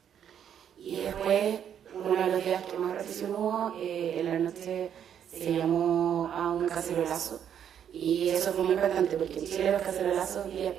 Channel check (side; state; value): left; quieter; 9.0 dB